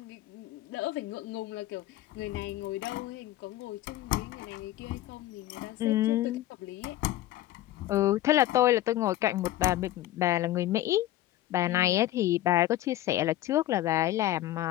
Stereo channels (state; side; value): quieter; right; 14.3 dB